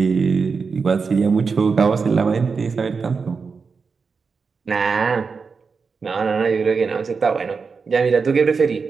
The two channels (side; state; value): left; quieter; 5.1 dB